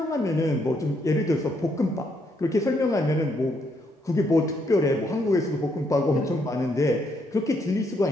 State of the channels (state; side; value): normal; both; correlation 0.74